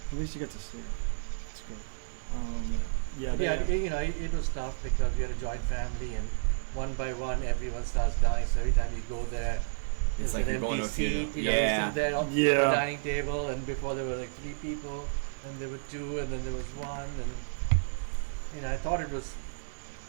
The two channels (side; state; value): left; silent; digital silence